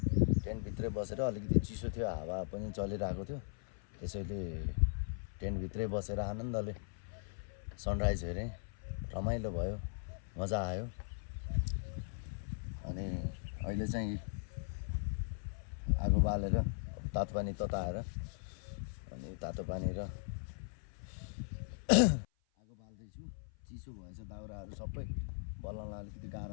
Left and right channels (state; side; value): silent; right; 52 dB below the other